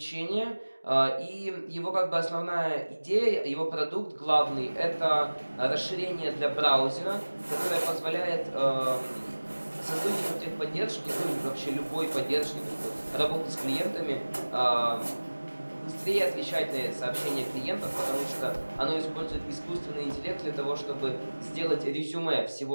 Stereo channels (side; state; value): both; inverted; correlation -1.00